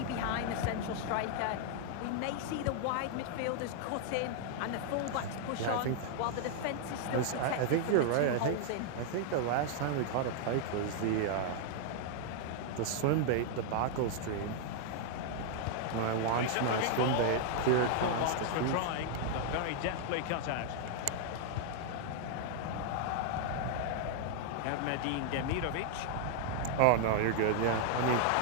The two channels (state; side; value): different; both; correlation -0.01